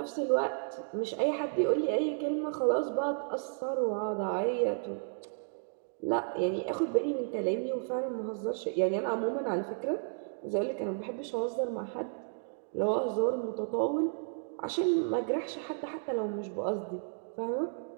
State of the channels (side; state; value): left; silent; digital silence